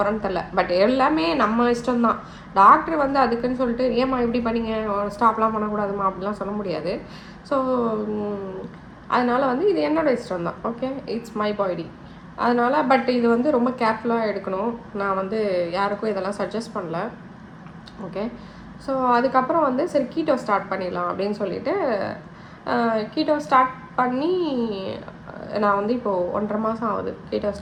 தெரில. பட் எல்லாமே நம்ம இஷ்டம்தான். டாக்டர் வந்து அதுக்குன்னு சொல்லிட்டு ஏம்மா இப்படி பண்ணிங்க, ஸ்டாப்லாம் பண்ணக்கூடாதுமா அப்படிலாம் சொல்ல முடியாது. ஸோ அதனால் வந்து இது என்னோடய இஷ்டம் தான். Okay, it's my body. அதனால் பட் இது வந்து ரொம்ப கேர்ஃபுல்லாக எடுக்கணும். நான் வந்து யாருக்கும் இதெல்லாம் சஜஸ்ட் பண்ணல. ஓகே, ஸோ அதுக்கப்புறம் வந்து சரி கீட்டோ ஸ்டார்ட் பண்ணிடலாம் அப்படின்னு சொல்லிட்டு கீட்டோ ஸ்டார்ட் பண்ணி நான் வந்து இப்போது 1.5 மாதம் ஆகுது கீட்டோ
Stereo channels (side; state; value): both; identical; correlation 1.00